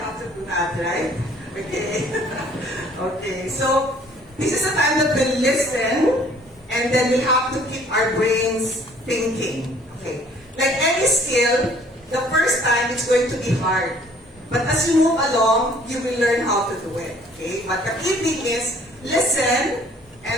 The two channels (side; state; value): both; normal; correlation 0.57